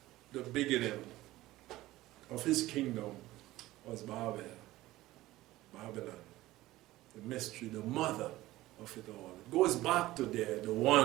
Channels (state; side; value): quieter; left; 17.0 dB